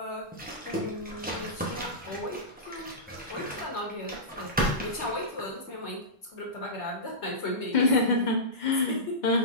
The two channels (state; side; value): normal; both; correlation -0.17